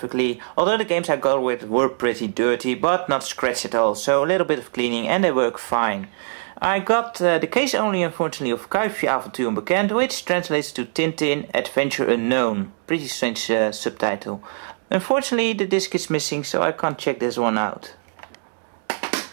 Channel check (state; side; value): silent; left; digital silence